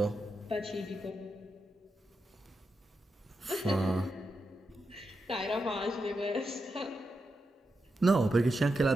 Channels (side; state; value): both; normal; correlation 0.87